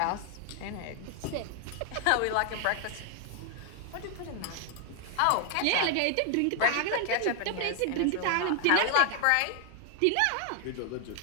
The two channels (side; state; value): both; different; correlation 0.00